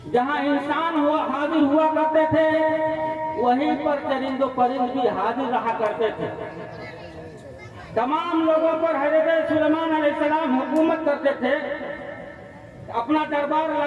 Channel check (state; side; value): identical; both; correlation 1.00